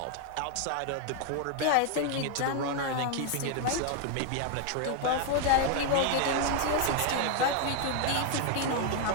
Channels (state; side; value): different; both; correlation 0.00